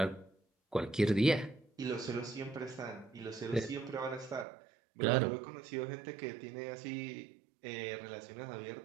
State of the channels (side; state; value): left; drops out; at 4.5 s